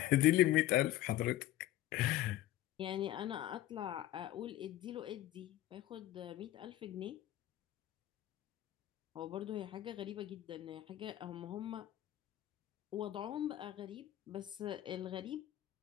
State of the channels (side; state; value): right; quieter; 14.1 dB